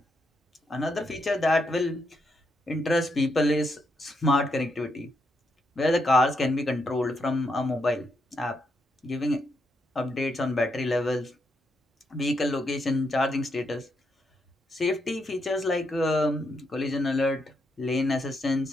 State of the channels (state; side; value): normal; both; correlation 0.80